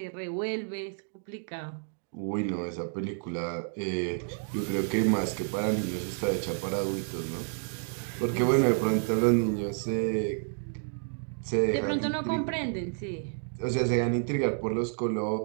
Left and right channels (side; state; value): left; silent; 58 dB below the other